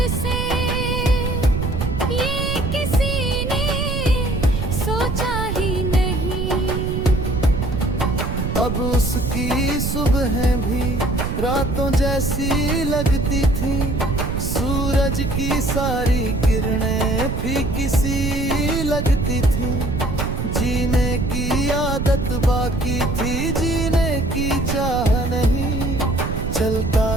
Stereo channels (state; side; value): noise; right; rumble, 2 dB below the sound